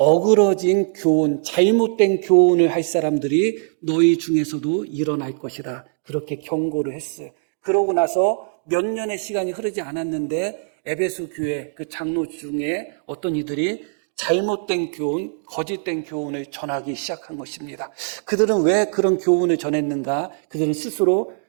교훈, 잘못된 교훈을 할 사람들이 너희 중에서도 일어날 것이다. 그렇게 경고를 했어요. 그러고 나서 몇 년의 시간이 흐르지 않았는데 에베소 교회 그 장로 중에 어떤 이들이 잘못된 교훈, 거짓된 교훈을 전하기 시작한 것입니다. 그들은 왜 그런 교훈을 전했는가? 그들은 스스로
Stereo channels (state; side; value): silent; left; digital silence